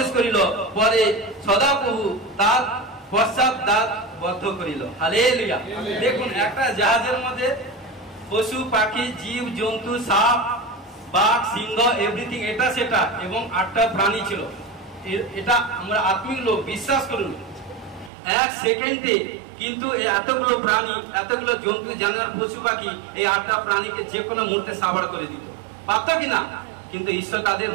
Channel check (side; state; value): left; drops out; at 18.1 s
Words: করিল। পরে সদাপ্রভু তার পশ্চাৎ দ্বার বদ্ধ করিল। হালেলুয়া। দেখুন একটা জাহাজের মধ্যে পশু পাখি, জীব জন্তু, সাপ, বাঘ, সিংহ, এভরিথিং, এটা সেটা, এবং 8টা প্রাণী ছিল। এটা আমরা আত্মিক লোক, বিশ্বাস করুন 1 সেকেন্ডে কিন্তু এতগুলো প্রাণী, এতগুলো জন্তু, জানোয়ার, পশু পাখি, এই 8টা প্রাণীকে যে কোনো মুহূর্তে সাবাড় করে দিত, পারত কিনা? কিন্তু ঈশ্বর তাদের